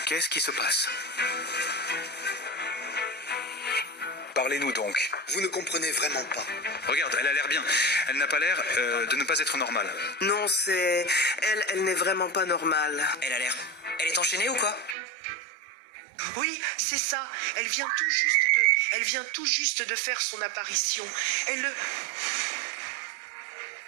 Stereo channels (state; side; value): drops out; left; at 15.0 s